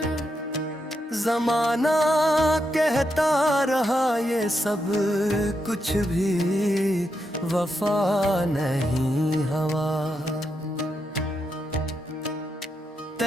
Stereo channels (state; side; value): normal; both; correlation 0.83